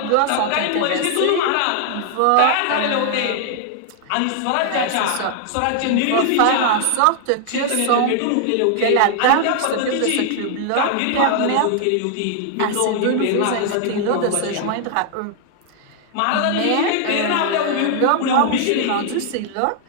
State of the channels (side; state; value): both; different; correlation 0.00